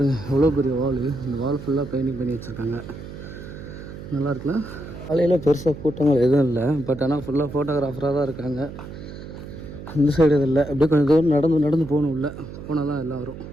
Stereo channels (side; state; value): right; noise; hum, 12 dB below the sound